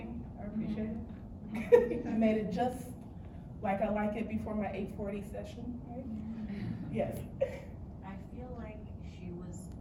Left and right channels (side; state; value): both; identical; correlation 1.00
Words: I appreciate it. I made it just like I like it before my 8:40 session, right? Yes. I feel like she was